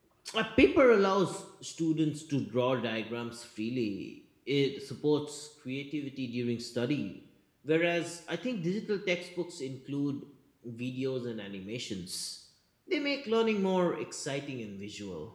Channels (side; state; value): both; identical; correlation 1.00